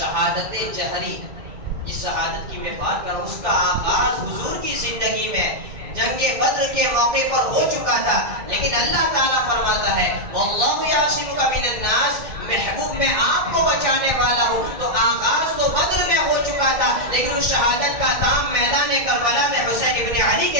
جہری، جس شہادت کی میں بات کر رہا ہوں، اس کا آغاز حضور کی زندگی میں جنگ بدر کے موقع پر ہو چکا تھا، لیکن اللہ تعالیٰ فرماتا ہے واللہ یعصمک من الناس، محبوب میں آپ کو بچانے والا ہوں۔ تو آغاز تو بدر میں ہو چکا تھا، لیکن اس شہادت کا کام میدان کربلا میں حسین ابن علی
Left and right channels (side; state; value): left; late; 1.6 ms